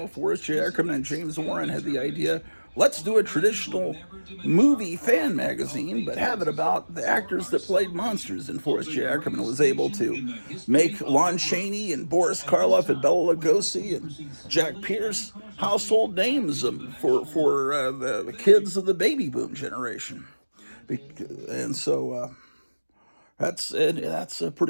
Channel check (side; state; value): both; inverted; correlation -1.00